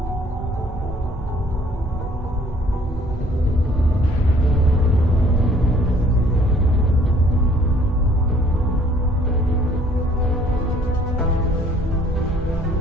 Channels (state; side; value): normal; both; correlation 0.59